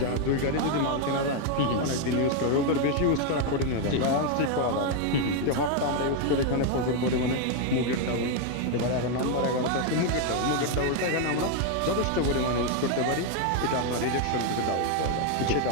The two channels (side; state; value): both; different; correlation 0.01